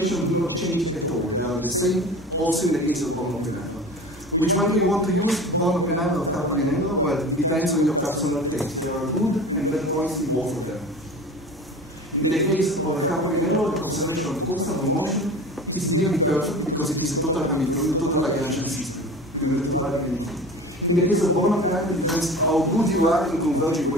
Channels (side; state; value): both; normal; correlation 0.36